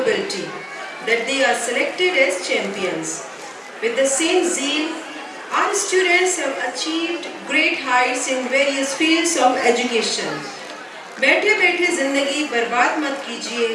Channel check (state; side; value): identical; both; correlation 1.00